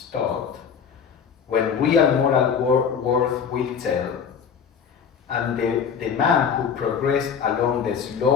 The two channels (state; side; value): quieter; right; 7.0 dB